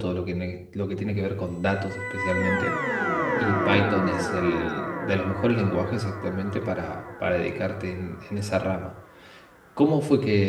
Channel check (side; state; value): both; identical; correlation 1.00